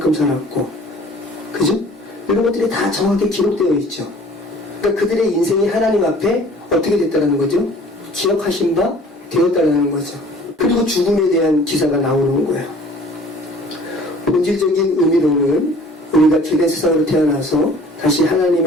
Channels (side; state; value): both; normal; correlation 0.50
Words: 살았고, 그죠? 이런 것들이 다 정확하게 기록되어 있죠. 그러니까 그들의 인생이 하나님 앞에 어떻게 됐다는 거죠? 기억하신 바 되었다는 거죠. 그리고 죽음에 대한 기사가 나오는 거예요. 본질적인 의미로는 우리가 죄된 세상으로 태어나서 다시